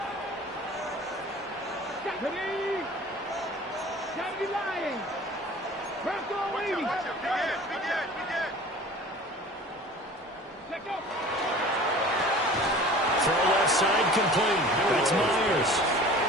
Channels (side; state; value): both; normal; correlation 0.43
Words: Ready? Gotta be lying. Bronco waiting. We did. Check out. Throw left side complete. That's Myers.